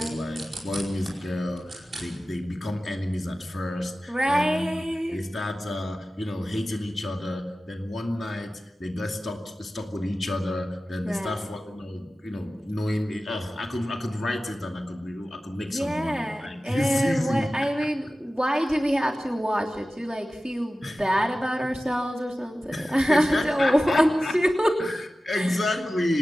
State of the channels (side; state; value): both; normal; correlation 0.95